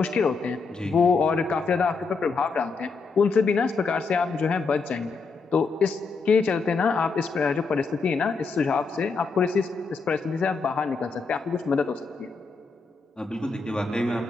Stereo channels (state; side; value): quieter; right; 4.5 dB